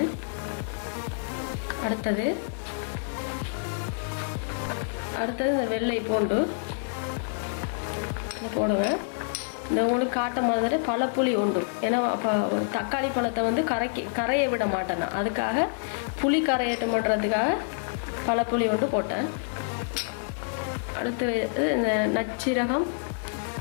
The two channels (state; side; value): silent; right; 58 dB below the other